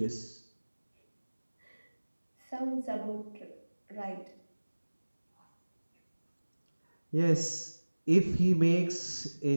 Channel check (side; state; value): both; inverted; correlation -1.00